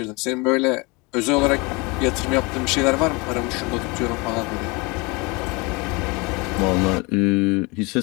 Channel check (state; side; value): quieter; right; 26.8 dB